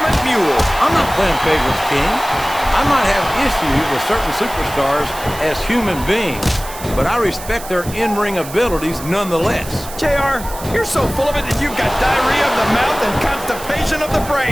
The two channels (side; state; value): right; noise; hiss, 14 dB below the sound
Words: mule. I'm not playing favorites, King. I might have issues with certain superstars as human beings, but I respect their in-ring abilities nonetheless. JR, you're so full of it that you've got diarrhea of the mouth and constipation of the